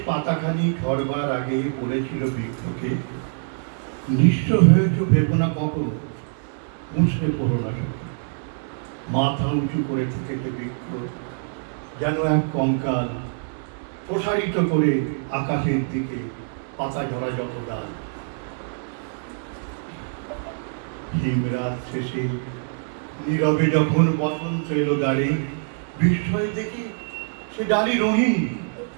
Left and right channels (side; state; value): left; silent; 62 dB below the other